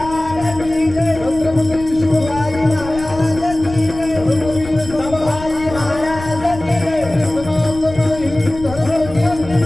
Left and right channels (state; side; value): noise; left; rumble, 14 dB below the sound